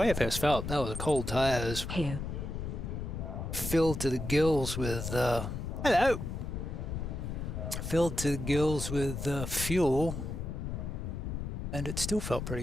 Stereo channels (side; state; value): left; noise; rumble, 5 dB below the sound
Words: I first felt, that was a cold tires. Here. Filled to the gills with, hello! Filled to the gills with fuel, and it still felt